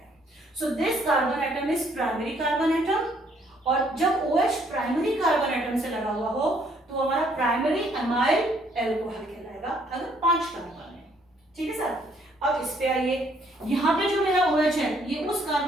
So this carbon atom is primary carbon atom, और जब OH प्राइमरी कार्बन एटम से लगा हुआ हो तो हमारा प्राइमरी अमाइल एल्कोहल कहलाएगा, अगर 5 कार्बन है. ठीक है सर, अब इस पे आइए. यहाँ पे जो मेरा OH है ये उस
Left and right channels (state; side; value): normal; both; correlation 0.66